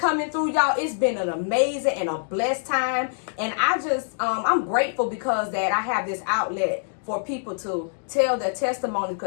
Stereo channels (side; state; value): right; silent; digital silence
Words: through, y'all. It's been an amazing and a blessed time. And I'm grateful because that I have this outlet for people to tell their testimonies,